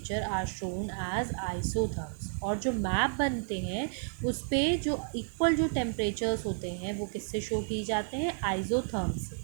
are shown as isotherms. और जो मैप बनते हैं उस पर जो इक्वल जो टेम्परेचर्स होते हैं वो किससे शो किए जाते हैं? आइसोथर्म से.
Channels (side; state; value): left; silent; 57 dB below the other